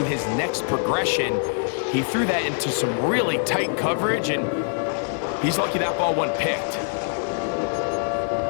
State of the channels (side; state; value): right; silent; digital silence